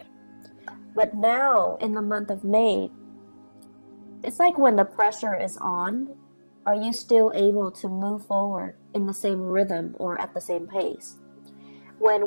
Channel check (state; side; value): inverted; both; correlation -1.00